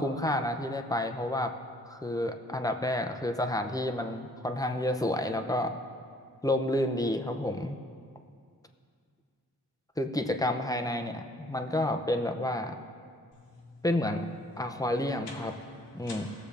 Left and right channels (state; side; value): normal; both; correlation 0.60